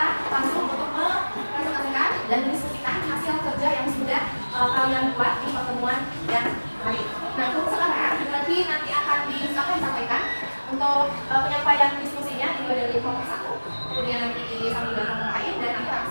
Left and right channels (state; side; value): inverted; both; correlation -1.00